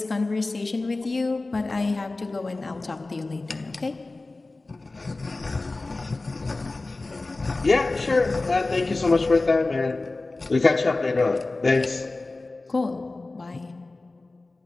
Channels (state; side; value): quieter; right; 3.2 dB